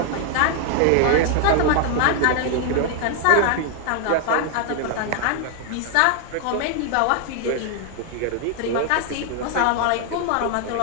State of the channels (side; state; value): both; different; correlation 0.00